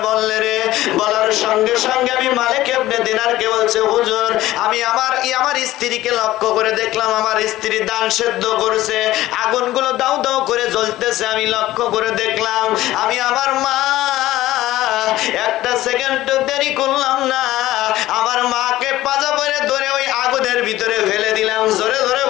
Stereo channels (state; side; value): quieter; right; 15.8 dB